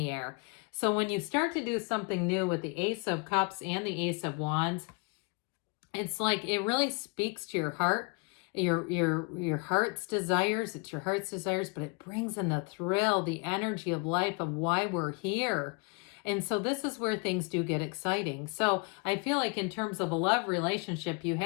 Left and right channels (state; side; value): quieter; right; 32.3 dB